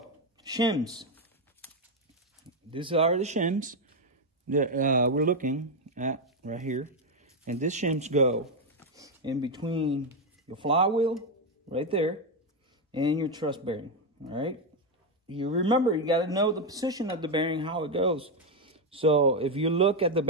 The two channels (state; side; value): normal; both; correlation 0.05